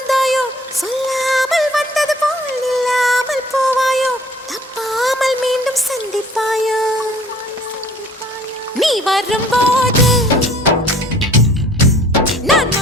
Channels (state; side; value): normal; both; correlation 0.54